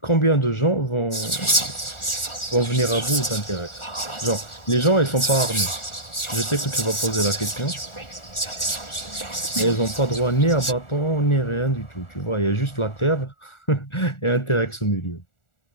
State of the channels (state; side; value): late; right; 1.4 ms